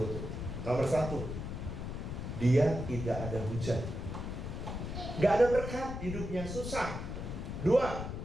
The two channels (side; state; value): left; noise; rumble, 5 dB below the sound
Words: Nomor 1, dia tidak ada hujan. Nggak ada berkat hidupnya, susah. 2,